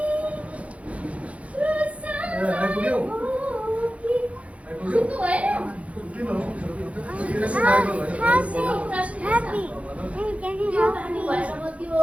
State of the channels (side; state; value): left; late; 0.064 ms